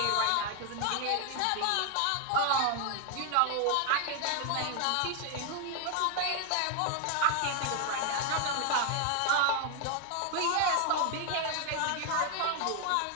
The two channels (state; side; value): different; both; correlation 0.00